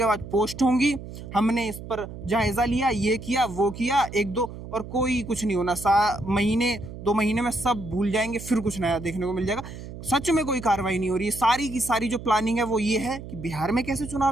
बाद पोस्ट होंगी, हमने इस पर जायजा लिया, ये किया, वो किया, 1-2, और कोई कुछ नहीं होना। 2 महीने में सब भूल जाएंगे, फिर कुछ नया देखने को मिल जाएगा। सच में कोई कार्रवाई नहीं हो रही है। सारी की सारी जो प्लानिंग है वो ये है कि बिहार में कैसे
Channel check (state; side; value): noise; right; hum, 12 dB below the sound